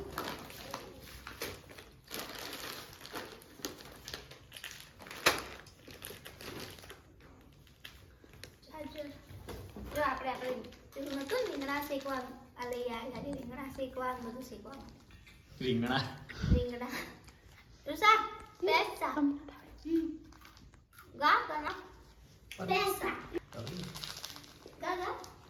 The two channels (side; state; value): both; identical; correlation 1.00